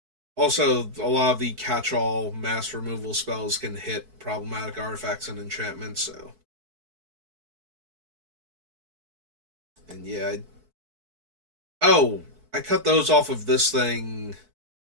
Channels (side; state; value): left; late; 4.6 ms